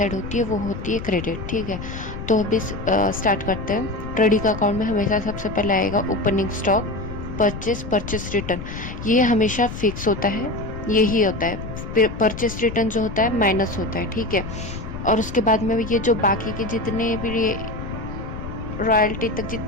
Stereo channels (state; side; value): noise; left; rumble, 8 dB below the sound